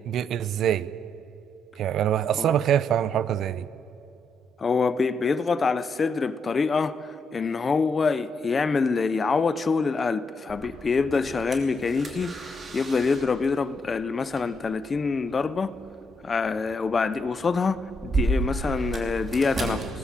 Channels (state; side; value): normal; both; correlation 0.78